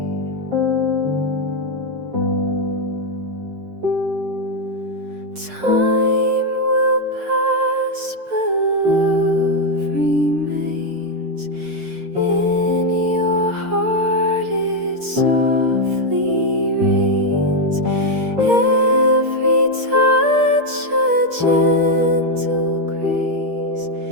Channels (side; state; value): left; late; 6.5 ms